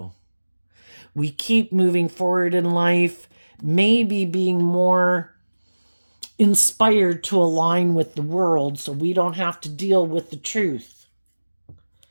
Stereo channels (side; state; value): both; inverted; correlation -1.00